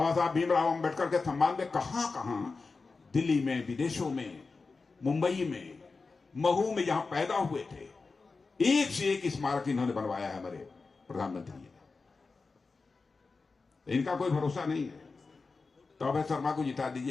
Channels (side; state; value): right; quieter; 4.2 dB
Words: साहब भीमराव अंबेडकर के सम्मान में कहां दिल्ली में, विदेशों में, मुंबई में, महू में, जहां पैदा हुए थे, एक से एक स्मारक इन्होंने बनवाया है हमारे प्रधानमंत्री ने। इनका कोई भरोसा नहीं है। तो अभय शर्मा को जिता